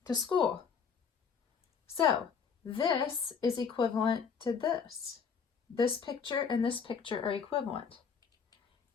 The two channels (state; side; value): quieter; right; 6.3 dB